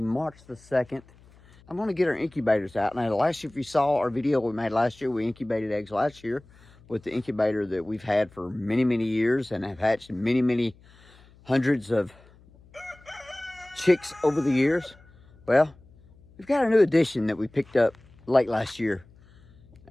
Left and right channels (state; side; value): noise; left; hum, 26 dB below the sound